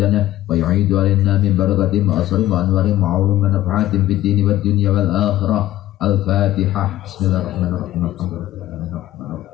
ويعيد علينا من بركاتهم وأسرهم وأنوارهم وعلوم ونفعاتهم في الدين والدنيا والآخرة. الفاتحة. بسم الله الرحمن الرحيم. الحمد لله الرحمن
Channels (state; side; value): quieter; right; 14.4 dB